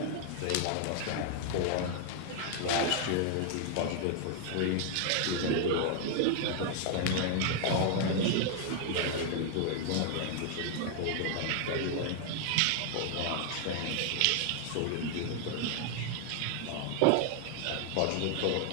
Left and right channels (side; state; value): both; different; correlation 0.00